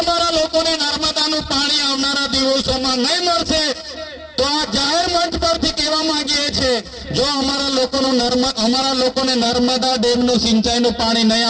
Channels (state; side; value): identical; both; correlation 1.00